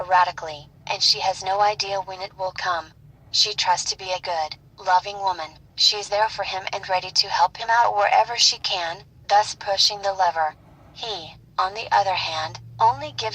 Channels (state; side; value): identical; both; correlation 1.00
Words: and she has no idea when it will come. She trusts to be a good, loving woman. She's there for him and ready to help him out wherever she can, thus pushing the lever. He, on the other hand, only